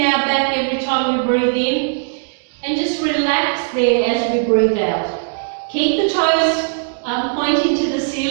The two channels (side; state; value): left; silent; digital silence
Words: our back every time we breathe in. And just relax there as we breathe out. Keep the toes pointing to the